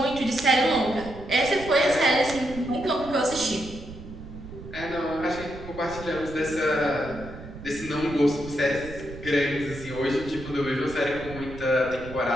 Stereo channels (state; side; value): noise; right; rumble, 13 dB below the sound